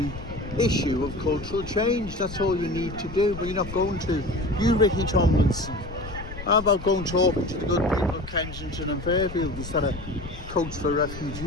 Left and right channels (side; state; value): left; noise; rumble, 12 dB below the sound